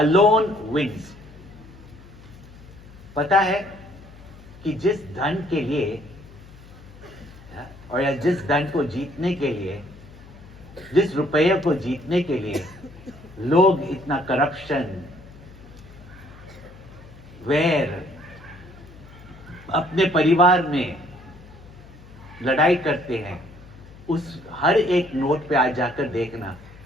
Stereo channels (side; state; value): left; noise; hum, 20 dB below the sound